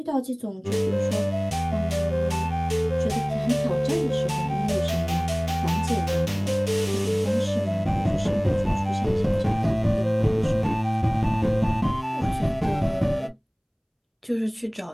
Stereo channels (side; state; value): both; identical; correlation 1.00